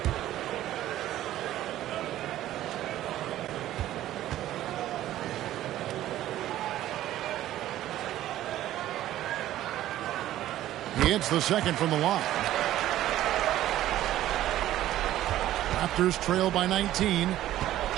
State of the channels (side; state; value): left; quieter; 13.6 dB